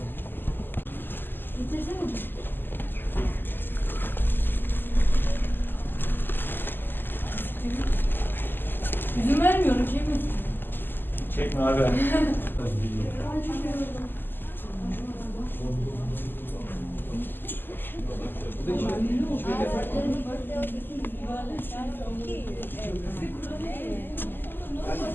İzin vermiyorum ki. Çekme abi.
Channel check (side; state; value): right; late; 0.094 ms